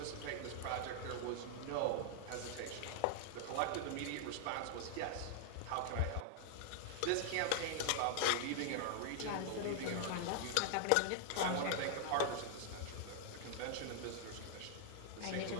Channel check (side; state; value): both; different; correlation 0.00